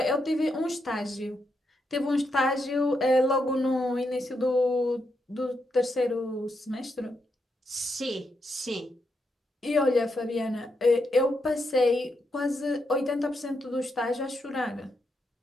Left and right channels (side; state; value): both; normal; correlation 0.82